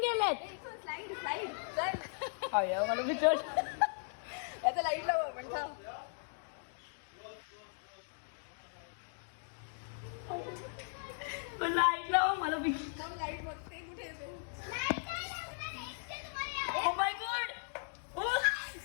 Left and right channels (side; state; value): right; silent; digital silence